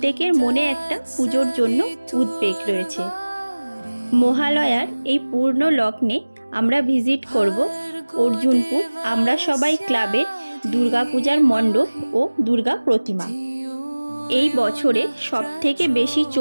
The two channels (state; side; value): inverted; both; correlation -1.00